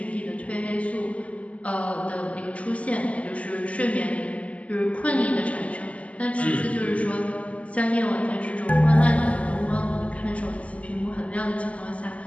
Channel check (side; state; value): right; late; 0.067 ms